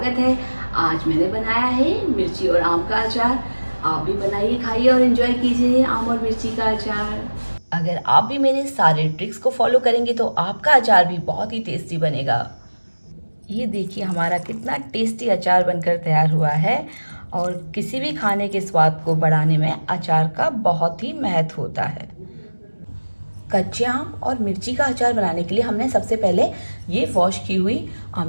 है। आज मैंने बनाया है मिर्ची और आम का अचार। आप भी बनाइए, खाइए और एंजॉय कीजिए आम और मिर्ची का अचार। अगर आप भी मेरे सारे ट्रिक्स को फॉलो करेंगे तो आपका अचार भी बहुत ही टेस्टी बनेगा। ये देखिए हमारा कितना टेस्टी अचार बनकर तैयार हुआ है। और किसी भी खाने के स्वाद को बढ़ाने में अचार का बहुत ही महत्व होता है। कच्चे आम और मिर्ची का अचार बनाने के लिए हमने सबसे पहले ये वॉश की हुई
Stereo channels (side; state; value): both; inverted; correlation -1.00